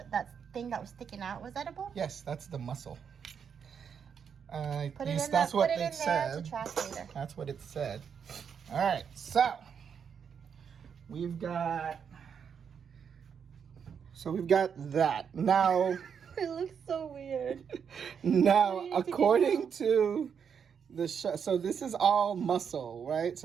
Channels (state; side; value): quieter; left; 7.2 dB